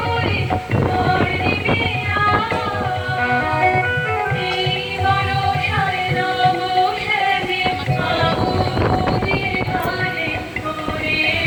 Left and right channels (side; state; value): both; identical; correlation 1.00